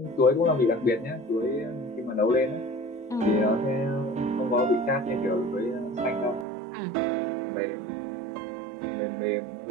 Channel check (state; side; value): drops out; left; at 6.5 s